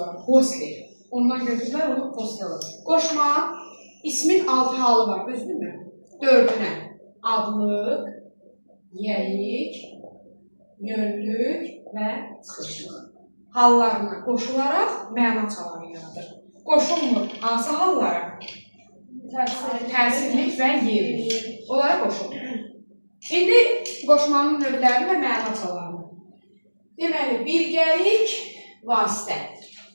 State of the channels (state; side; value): inverted; both; correlation -1.00